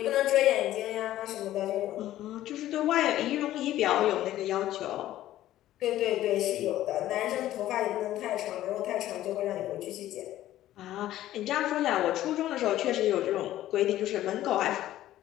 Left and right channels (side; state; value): right; quieter; 13.8 dB